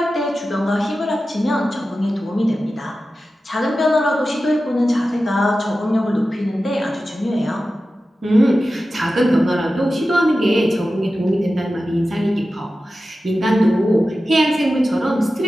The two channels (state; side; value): normal; both; correlation 0.93